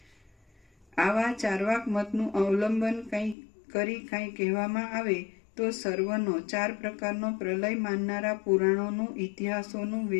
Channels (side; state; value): right; drops out; at 3.4 s